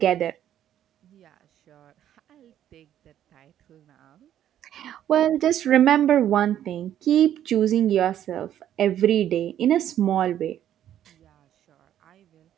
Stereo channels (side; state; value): left; quieter; 11.0 dB